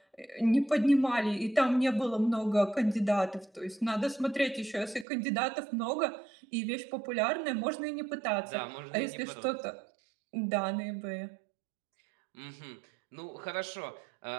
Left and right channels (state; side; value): drops out; left; at 5.1 s